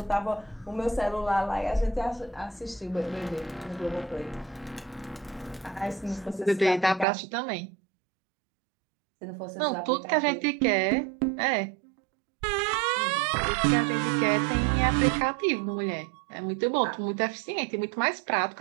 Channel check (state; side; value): drops out; left; at 7.1 s